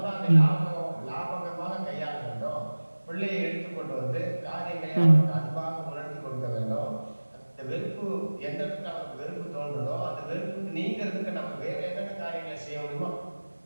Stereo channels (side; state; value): both; inverted; correlation -1.00